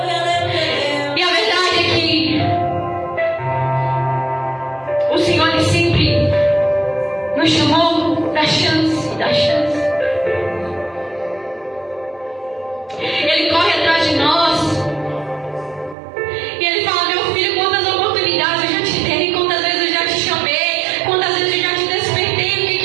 E a verdade é que o Senhor ele sempre nos chamou da chance, da chance. Ele corre atrás de nós. E ele fala: meu filho, quantas oportunidades eu já te dei, quantas vezes eu já te chamei, quantas vezes eu já te despertei, o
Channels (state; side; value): drops out; left; at 16.0 s